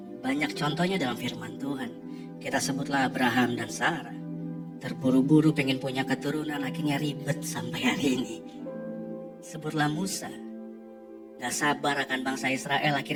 Banyak contohnya dalam firman Tuhan. Kita sebutlah Abraham dan Sarah. Terburu-buru pengen punya keturunan, akhirnya ribet sampai hari ini. Sebutlah Musa. Gak sabar akan bangsa Israel,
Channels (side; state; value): both; identical; correlation 1.00